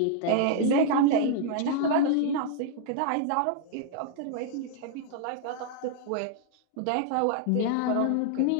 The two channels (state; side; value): different; both; correlation -0.01